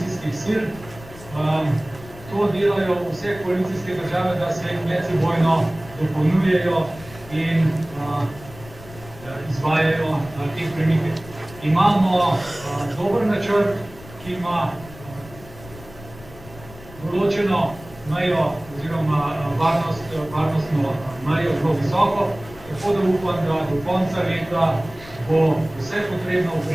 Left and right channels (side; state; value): left; noise; rumble, 18 dB below the sound